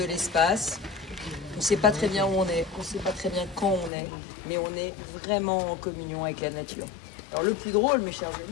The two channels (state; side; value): drops out; right; at 3.9 s